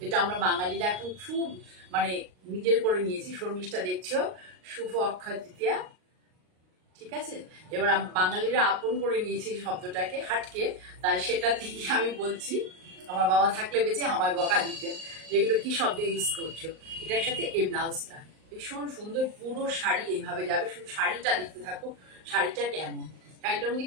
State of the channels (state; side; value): late; left; 38 ms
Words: যেটা আমরা বাঙালিরা এখন খুব মানে নিজের করে নিয়েছি। শর্মিষ্ঠা দেখছো, শুভ অক্ষয় তৃতীয়া। ঠিক আছে, এবার বাঙালিরা আপন করে নিয়েছি শব্দটাকে হাটকে, তাই সেটা থেকে আমি বলছি। আমার বাবা থাকলে বেঁচে আমায় বকা দিতেন, যেগুলো কি শব্দ ইউজ করছো। এটার সাথে এই ব্লাউজটা ভীষণ সুন্দর, পুরো শাড়ি এইভাবে যাবে। শুধু শাড়িটা দেখতে থাকো, শাড়িটা কেমন। শাড়িটার মধ্যে